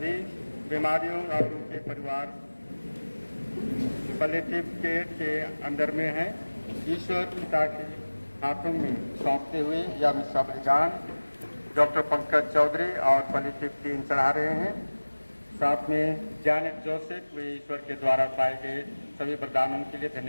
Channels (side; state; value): both; inverted; correlation -1.00